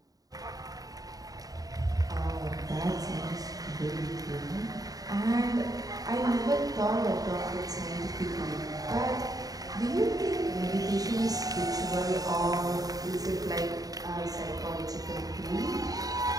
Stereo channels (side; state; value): left; late; 0.18 ms